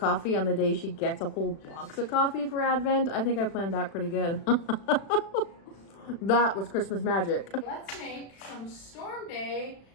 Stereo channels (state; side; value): late; right; 36 ms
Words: on the day she gets a whole box of coffee for Advent. I think I planned that pretty good. That was Christmas magic. Let's make some Storm Day